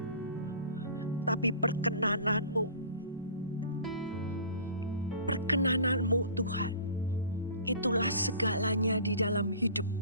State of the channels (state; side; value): inverted; both; correlation -0.42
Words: tapi perkenanan-Mu. Perkenanan-Mu, Tuhan, itulah segalanya di dalam hidup